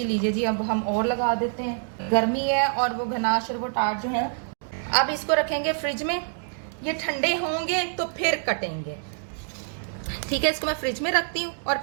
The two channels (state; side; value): silent; left; digital silence